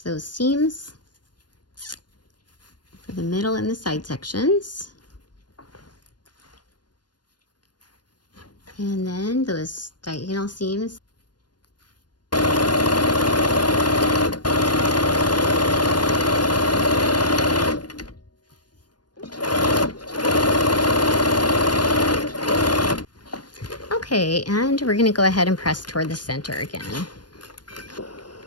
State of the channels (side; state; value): right; late; 0.70 ms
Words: those seams for the middle and the side sections. And then those diagonal seams. Okay, and we're going to go ahead and press toward the center again.